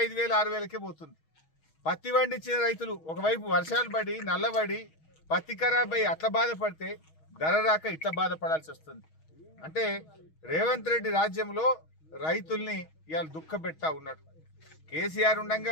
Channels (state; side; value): late; right; 6.3 ms